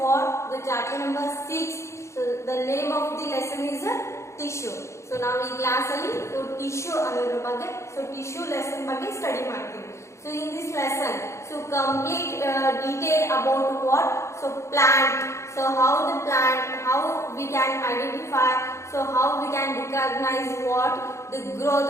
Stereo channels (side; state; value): right; late; 0.14 ms